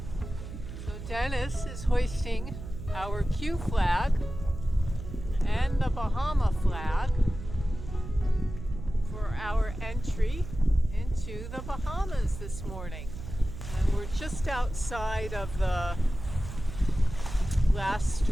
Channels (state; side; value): noise; right; hum, 10 dB below the sound